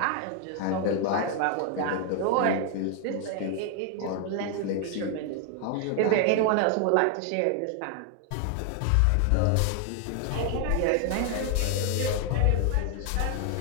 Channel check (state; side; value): different; both; correlation 0.00